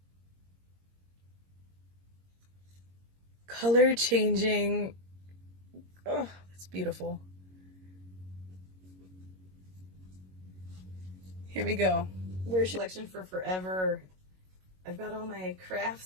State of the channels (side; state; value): left; late; 22 ms